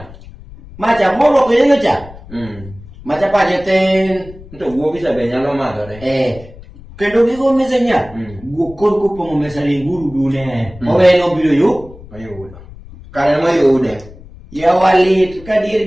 Macha moro ko yenga cha. Macha paje ten. Nto guogi sabe nyalo madhore. Kendo gigo mese nya. Guokor kopong'o mesa linguru dune. Oweno biro yu. Mayudo. Kare mayude. Yawalit kadir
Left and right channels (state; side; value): noise; left; rumble, 19 dB below the sound